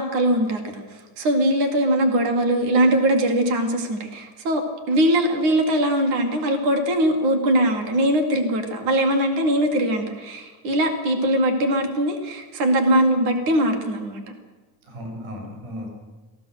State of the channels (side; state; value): left; late; 9.6 ms